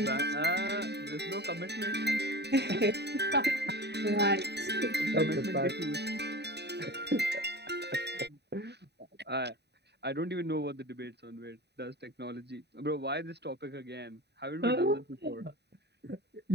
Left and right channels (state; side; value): late; left; 0.49 ms